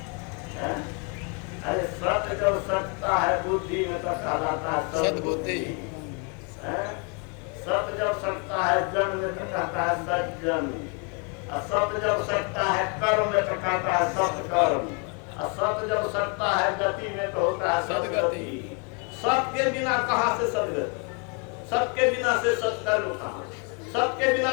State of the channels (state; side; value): quieter; right; 36.1 dB